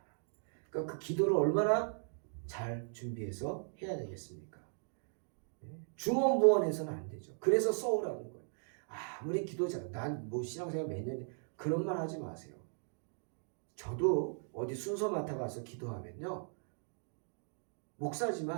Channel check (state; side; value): silent; left; digital silence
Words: 그러니까 그 기도를 얼마나 잘 준비해서 해야 되겠습니까? 중언부언해서는 안 되죠. 그래서 써오라는 거예요. 아무리 기도자, 난 뭐 신앙생활 몇 년, 그런 말 하지 마세요. 저도 어디 순서 맡아가서 기도하면요.